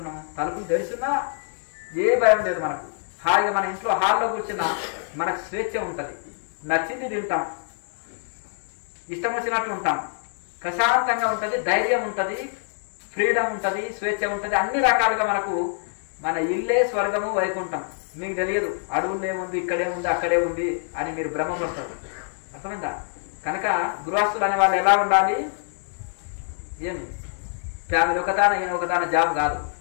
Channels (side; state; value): right; silent; 62 dB below the other